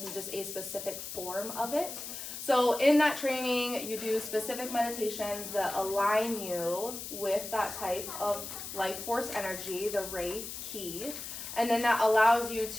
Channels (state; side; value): noise; left; hiss, 8 dB below the sound